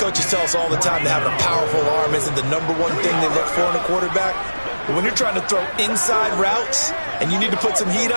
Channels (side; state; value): both; inverted; correlation -1.00